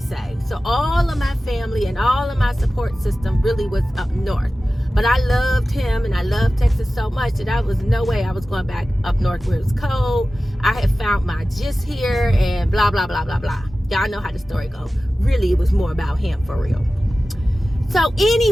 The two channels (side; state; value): both; normal; correlation 0.95